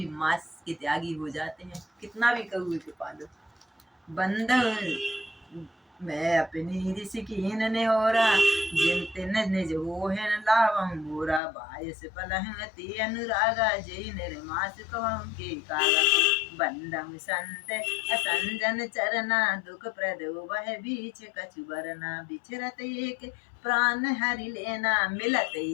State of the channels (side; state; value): right; drops out; at 11.4 s